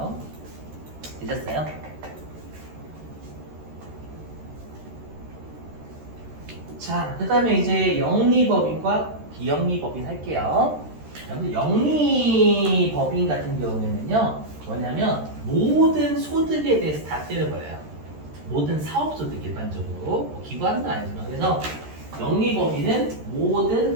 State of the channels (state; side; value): late; left; 13 ms